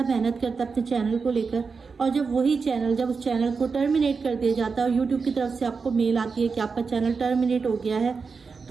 मेहनत करता है अपने चैनल को लेकर, और जब वही चैनल जब उस चैनल को टर्मिनेट कर दिया जाता है और यूट्यूब की तरफ से आपको मेल आती है कि आपका चैनल टर्मिनेट हो गया है,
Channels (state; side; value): quieter; left; 5.0 dB